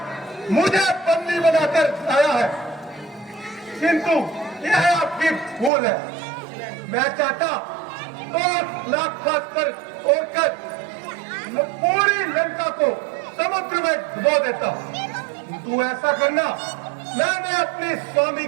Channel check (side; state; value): left; drops out; at 5.7 s